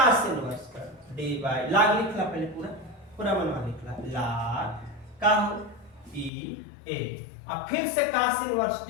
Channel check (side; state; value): right; drops out; at 6.3 s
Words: इनवर्स कर dy, log लिखला पहले पूरा पूरा मनवा लिखला log का ई ए, अब फिर से cos इनवर्स t